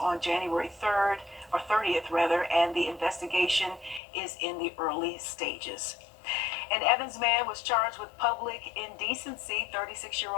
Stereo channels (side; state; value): right; drops out; at 4.0 s